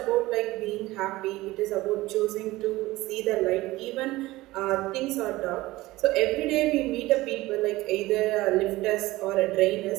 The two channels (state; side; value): quieter; left; 18.6 dB